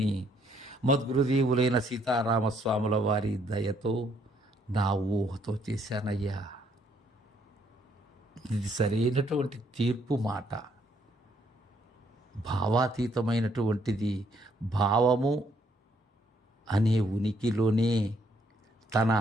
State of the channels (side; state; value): both; normal; correlation 0.69